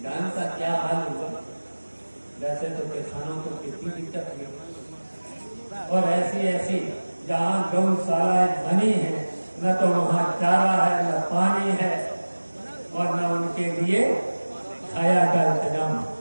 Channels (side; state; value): both; inverted; correlation -1.00